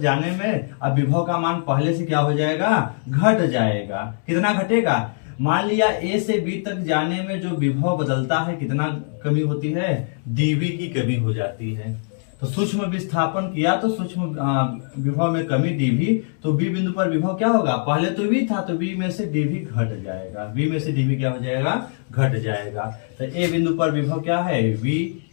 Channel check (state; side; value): silent; right; digital silence